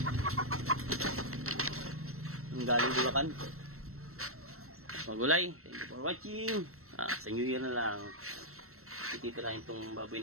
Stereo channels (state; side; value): late; left; 0.63 ms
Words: Ang galing Bulacan. Magulay. Thank you for watching. Sa New Year na lang. Titirahin tong baboy